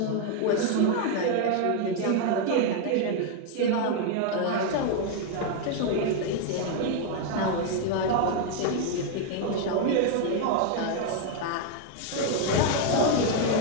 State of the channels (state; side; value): different; both; correlation 0.01